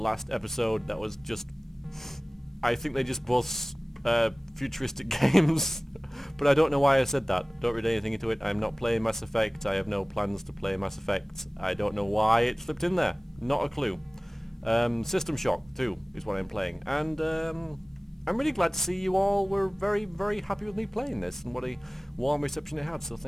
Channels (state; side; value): normal; both; correlation 0.98